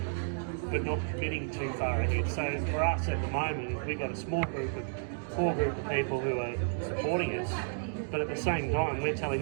but not committing too far ahead. So for us at the moment, we've got a small group of people who are supporting us, but at the same time, we're telling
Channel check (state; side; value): silent; left; digital silence